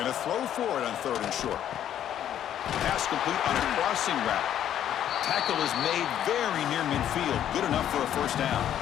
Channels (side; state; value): right; quieter; 10.6 dB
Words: going to throw for it on third and short. Pass complete on a crossing route. Tackle is made very near midfield. Good enough for a first down.